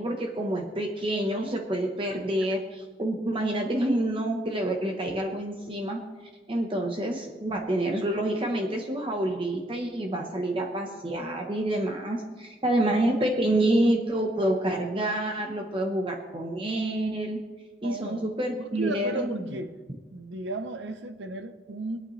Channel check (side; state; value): both; normal; correlation 0.68